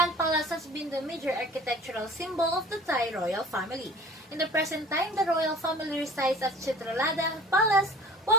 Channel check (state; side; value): normal; both; correlation 0.45